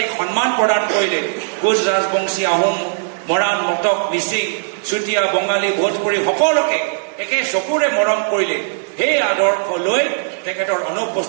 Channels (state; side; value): silent; left; 57 dB below the other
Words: সন্মান প্ৰদান কৰিলে, কোচ ৰাজবংশী, আহোম, মৰাণ, মটক, মিচিং, চুতীয়া, বঙালী, ভোজপুৰী সকলোকে একে চকুৰে মৰম কৰিলে, সেই আদৰ্শ লৈ তেখেতৰ